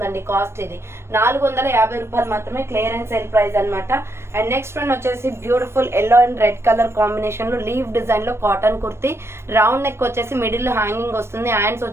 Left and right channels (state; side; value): late; left; 0.12 ms